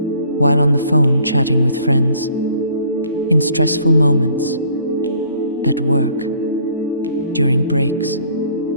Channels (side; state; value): both; inverted; correlation -0.58